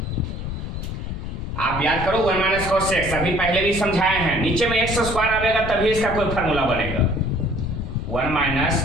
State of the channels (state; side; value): noise; left; rumble, 6 dB below the sound